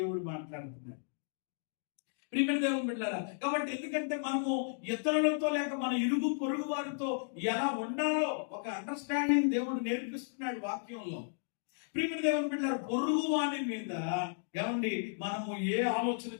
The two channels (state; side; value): silent; right; digital silence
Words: మాట్లాడుతున్నాడు. ప్రియమైన దేవుని బిడ్డలారా, కాబట్టి ఎందుకంటే మనము ఇతరులతో లేక మన ఇరుగు పొరుగు వారితో ఎలా ఉండాలో ఒక అండర్స్టాండింగ్ దేవుడు నేర్పిస్తున్నాడు వాక్యంలో. ప్రియమైన దేవుని బిడ్డలారా, పొరుగువాని మీద మనము ఏ ఆలోచన